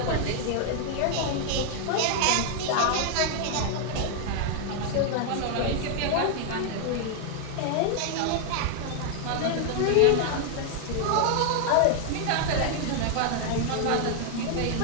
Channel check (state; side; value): different; both; correlation 0.00